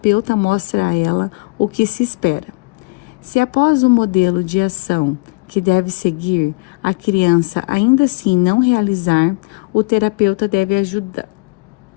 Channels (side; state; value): right; quieter; 29.6 dB